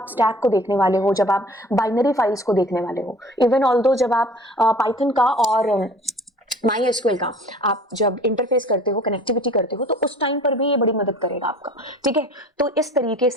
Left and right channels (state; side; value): normal; both; correlation 0.47